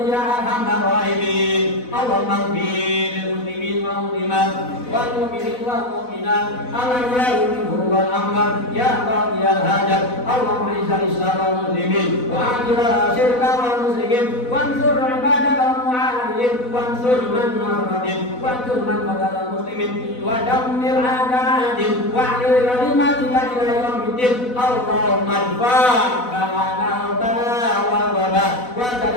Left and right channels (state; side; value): late; right; 4.0 ms